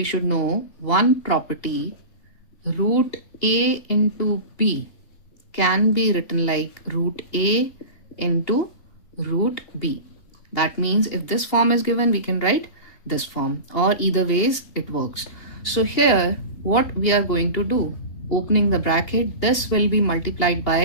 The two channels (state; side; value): late; right; 2.8 ms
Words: should know one property. Root a into b can be written like root a into root b. That means if this form is given, we can write this form, or either ways it works. So here what we are going to do, opening the bracket, this will be multiplied